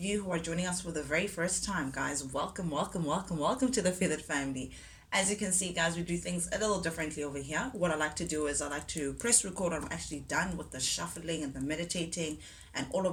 who are joining us for the very first time, guys, welcome, welcome, welcome, welcome to the Feathered family. As you can see, guys, we do things a little differently over here. What I like to do is I like to press record when I'm actually done with the shuffling and the meditating and all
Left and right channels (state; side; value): identical; both; correlation 1.00